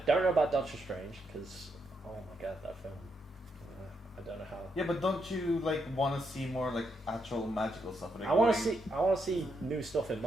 know about Doctor Strange because oh my god, that film. I don't know how. Yeah, but don't you want to see more actual magical stuff? I want to see new stuff in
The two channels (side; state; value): both; normal; correlation 0.80